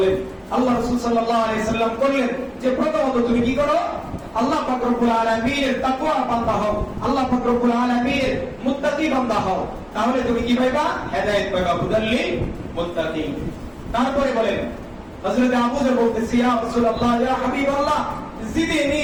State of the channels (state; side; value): identical; both; correlation 1.00